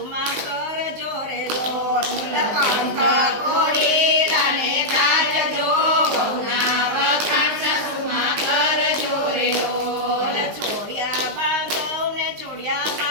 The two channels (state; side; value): late; left; 19 ms